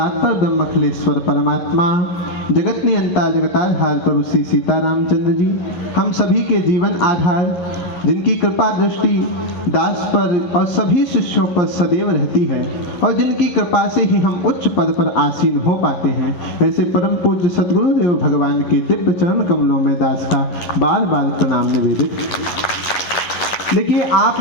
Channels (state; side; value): late; right; 11 ms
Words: ब्रह्मखिलेश्वर परमात्मा, जगत नियंता जगताधार प्रभु श्री सीतारामचंद्र जी, हम सभी के जीवन आधार, जिनकी कृपा दृष्टि दास पर और सभी शिष्यों पर सदैव रहती है और जिनकी कृपा से ही हम उच्च पद पर आसीन हो पाते हैं, ऐसे परम पूज्य सद्गुरुदेव भगवान के दिव्य चरण कमलों में दास का बार बार प्रणाम निवेदित। देखिए, आप